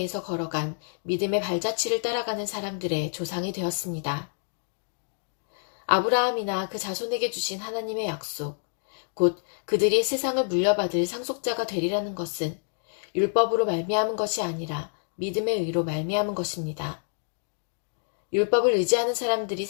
걸어간 믿음의 발자취를 따라가는 사람들의 조상이 되었습니다. 아브라함이나 그 자손에게 주신 하나님의 약속, 곧 그들이 세상을 물려받을 상속자가 되리라는 것은 율법으로 말미암은 것이 아니라 믿음의 의로 말미암은 것입니다. 율법을 의지하는 사람들이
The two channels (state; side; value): silent; right; digital silence